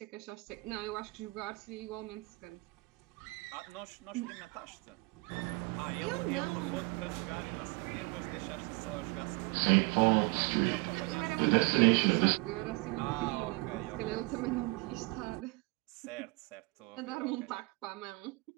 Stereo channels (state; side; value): quieter; left; 26.7 dB